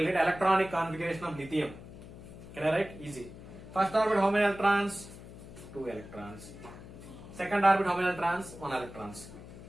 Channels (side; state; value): left; noise; hum, 15 dB below the sound